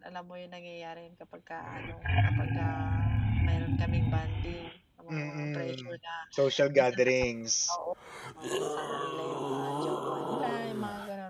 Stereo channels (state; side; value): identical; both; correlation 1.00